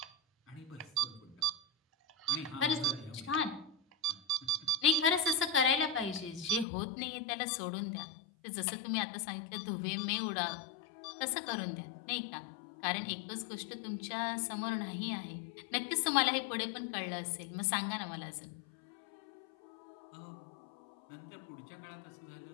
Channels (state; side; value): drops out; right; at 6.7 s